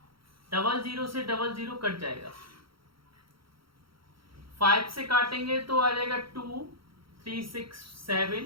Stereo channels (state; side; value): late; left; 0.74 ms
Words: 00 से 00 कट जाएगा, 5 से काटेंगे तो आ जाएगा 2, 3, 6,